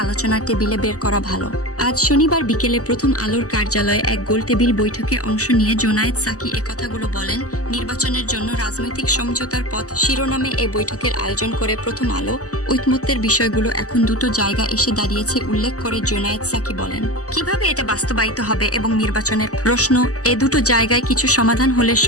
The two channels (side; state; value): right; late; 0.66 ms